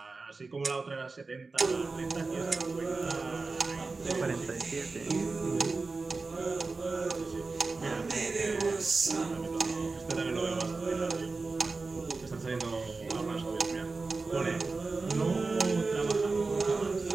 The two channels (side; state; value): left; quieter; 3.9 dB